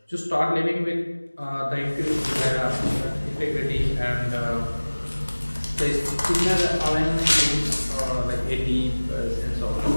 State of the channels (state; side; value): inverted; both; correlation -1.00